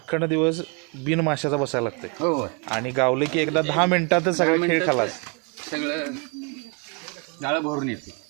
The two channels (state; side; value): quieter; left; 31.8 dB